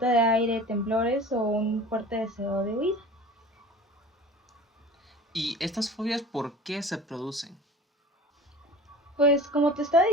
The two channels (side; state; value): both; normal; correlation 0.39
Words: de aire, temblores o un fuerte deseo de huida. ¿Y estas fobias por qué se producen? Pues como te estaba